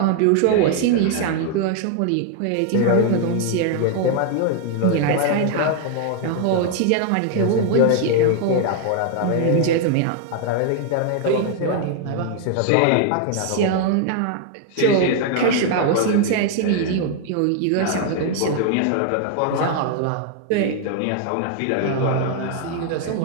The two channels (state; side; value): different; both; correlation 0.00